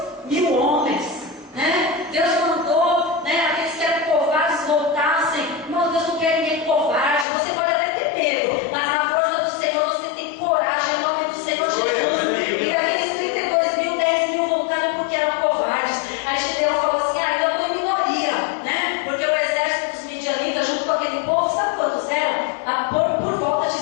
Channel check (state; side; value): drops out; right; at 7.2 s